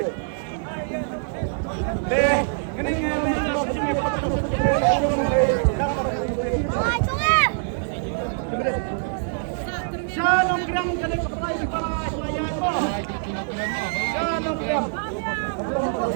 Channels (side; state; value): left; silent; 62 dB below the other